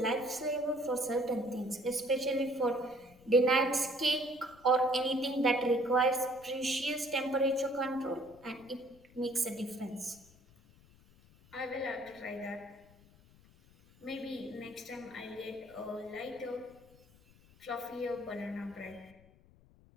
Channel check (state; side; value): noise; left; rumble, 27 dB below the sound